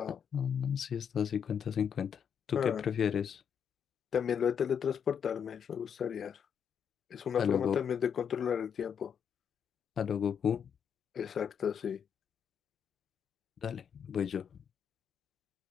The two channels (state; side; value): quieter; right; 7.7 dB